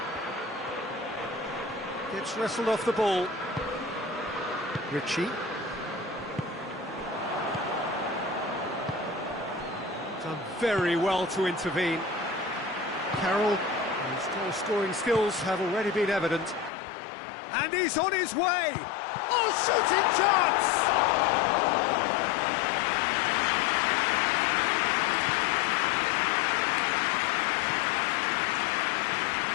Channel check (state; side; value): drops out; right; at 16.7 s